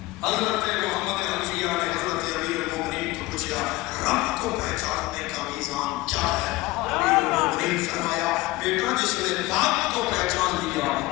حضرت محمد حنفیہ نے حضرت امیر المومنین کو پوچھا رب کو پہچاننے کا میزان کیا ہے؟ امیر المومنین فرمایا بیٹا جس نے باپ کو پہچان لیا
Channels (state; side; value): quieter; right; 19.7 dB